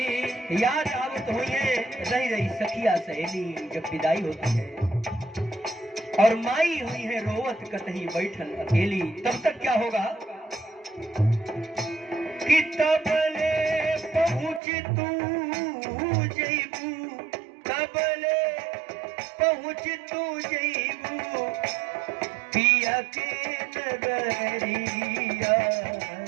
याद आवत हुई है, रही रही सखिया सहेली, जब विदाई होती है, और माई हुई है रोवत कतही बैठल अकेली। तब तक क्या होगा कि तबले पहुँच तू जईबू, तबले पहुँच तू जईबू पिया के नगरिया,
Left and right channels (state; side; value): drops out; left; at 14.6 s